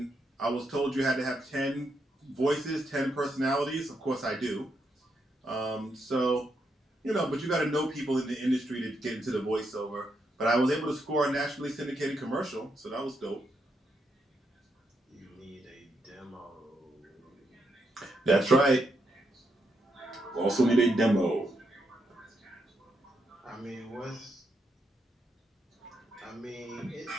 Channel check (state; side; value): normal; both; correlation 0.80